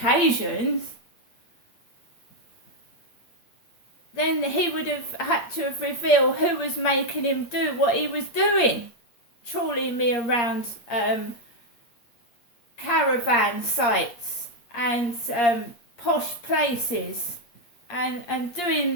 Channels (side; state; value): right; late; 8.5 ms